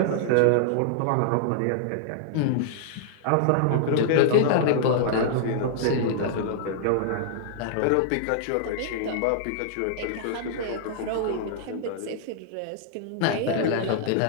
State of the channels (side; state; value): both; different; correlation -0.01